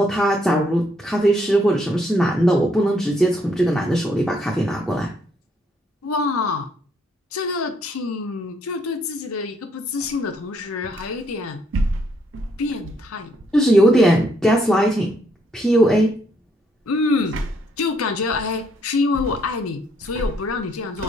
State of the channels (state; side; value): normal; both; correlation 0.71